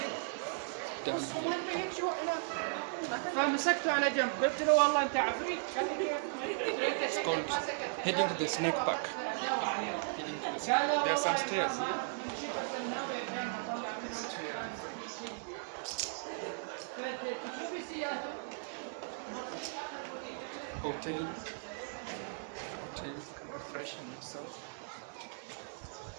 It's called heading to the snake park. There are some stairs here. Hotel, can refreshing yourself.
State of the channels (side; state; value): left; silent; digital silence